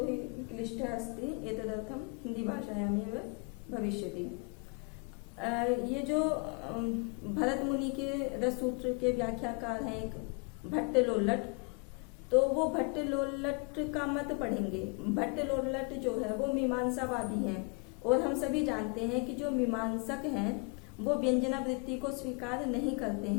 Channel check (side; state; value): right; quieter; 34.2 dB